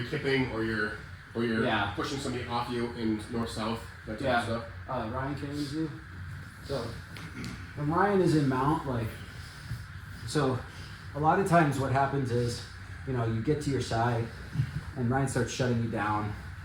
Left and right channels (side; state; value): both; identical; correlation 1.00